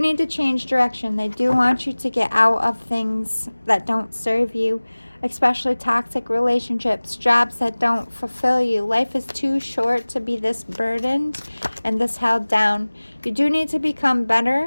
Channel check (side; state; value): both; inverted; correlation -1.00